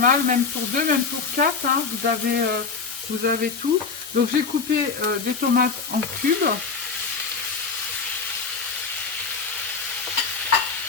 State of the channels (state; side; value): quieter; right; 5.1 dB